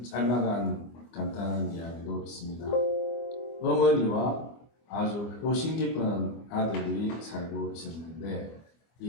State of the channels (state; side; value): late; right; 24 ms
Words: 짤막한 간단한 이야기도 있습니다. 어머니와 아주 효심 깊은 아들이 살고 있었는데